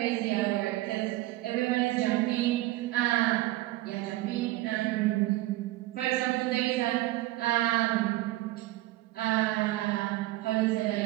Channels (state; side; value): quieter; left; 17.4 dB